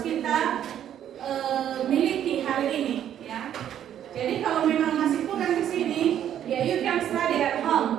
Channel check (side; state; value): left; quieter; 10.4 dB